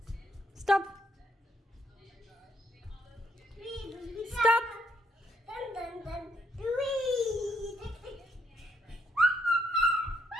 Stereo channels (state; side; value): normal; both; correlation 0.73